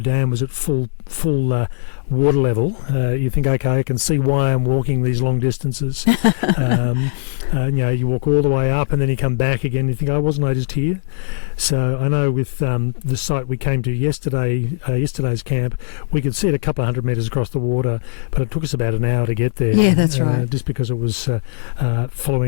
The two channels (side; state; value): right; silent; digital silence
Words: was at full water level. You think, okay, I can see why I'm walking these long distances. You walk all the way up and then you come back again. You think, oh, wasn't I just here? So I know with the site we came to yesterday's camp, we could see it a couple of 100 metres across the water, but it took us about an hour to get there. Yeah, that's right. Just because it was